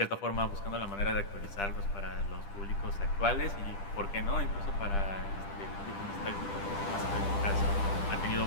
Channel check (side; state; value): right; late; 10 ms